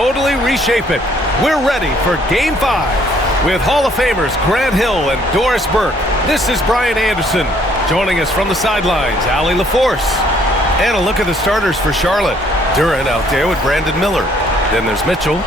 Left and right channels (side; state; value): both; normal; correlation 0.64